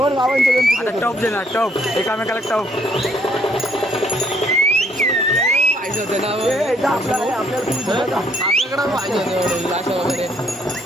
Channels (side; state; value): both; normal; correlation 0.67